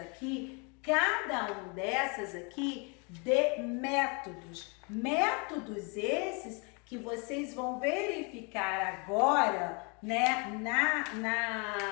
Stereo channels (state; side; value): quieter; right; 32.8 dB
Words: cada um dessas aqui, de métodos. Métodos esses que vocês vão verificar agora, né,